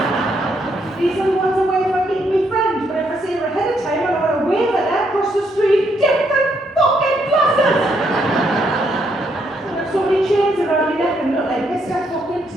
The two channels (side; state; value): both; normal; correlation 0.74